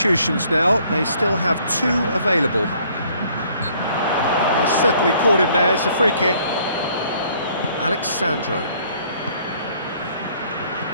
now. They still have 2 available. He's certainly caught him there. It's a free kick. Alexandro.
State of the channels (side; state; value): both; inverted; correlation -0.61